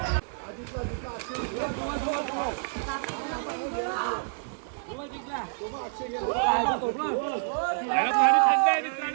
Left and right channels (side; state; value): left; silent; 59 dB below the other